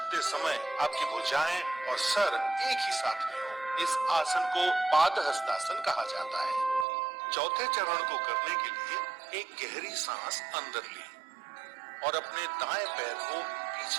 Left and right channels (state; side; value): drops out; left; at 6.9 s